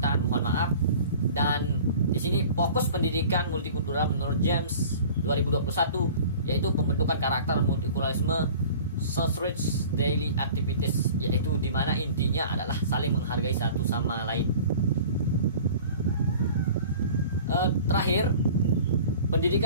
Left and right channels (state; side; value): inverted; both; correlation -0.43